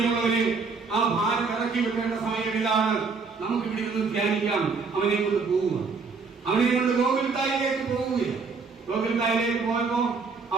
ആ ഭാരം ഇറക്കി വെക്കേണ്ട സമയങ്ങളിലാണ് നമുക്ക് ഇവിടെ നിന്ന് ധ്യാനിക്കാം. അവനെ കൊണ്ട് പോവുക. അവനെ കൊണ്ട് ഗോകുൽത്തായിലേക്ക് പോവുകയാണ്. ഗോകുൽത്തായിലേക്ക് പോയപ്പോ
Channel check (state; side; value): quieter; left; 4.8 dB